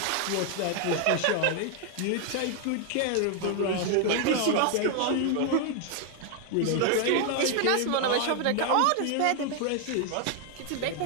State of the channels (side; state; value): both; different; correlation 0.00